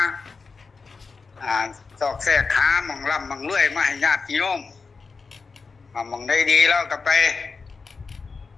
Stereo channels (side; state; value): right; quieter; 4.7 dB